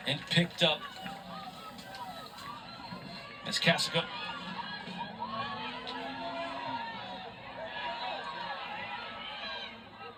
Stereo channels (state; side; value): identical; both; correlation 1.00